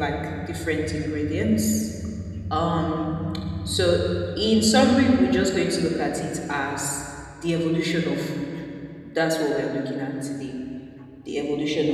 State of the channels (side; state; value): both; identical; correlation 1.00